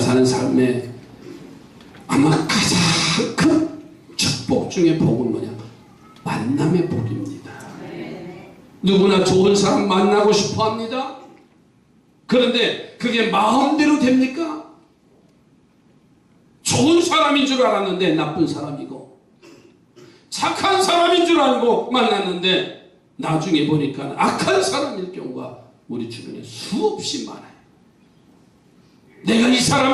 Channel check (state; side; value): identical; both; correlation 1.00